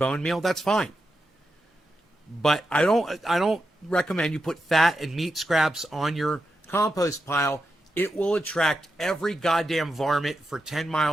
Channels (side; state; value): both; normal; correlation 0.88